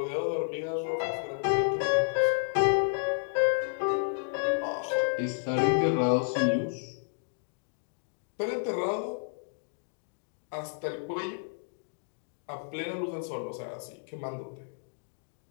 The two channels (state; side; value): silent; right; digital silence